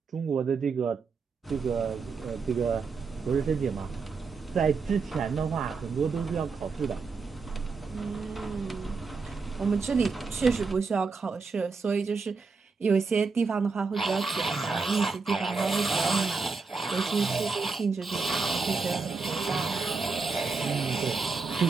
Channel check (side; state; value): left; quieter; 4.6 dB